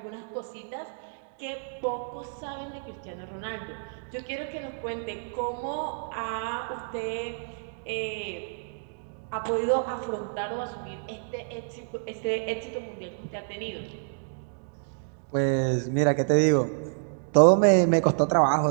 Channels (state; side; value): silent; left; digital silence